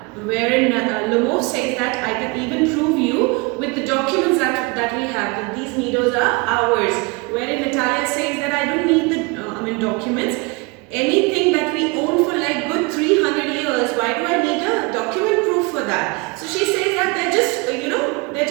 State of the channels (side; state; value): left; quieter; 28.0 dB